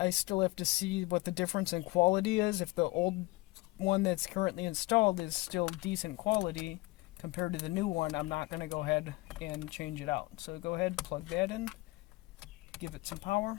I still have to see what the difference in quality is. If the old one that's currently installed is still decent quality compared to the new one, I'm not going to go ahead and change it out. So go ahead, plug that in, give it some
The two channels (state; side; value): quieter; right; 21.5 dB